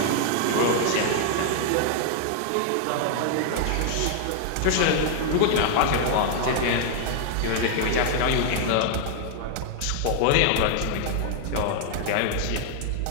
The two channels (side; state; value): both; different; correlation 0.00